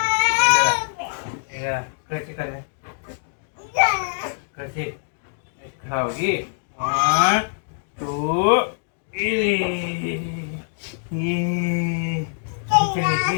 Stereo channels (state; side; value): silent; right; digital silence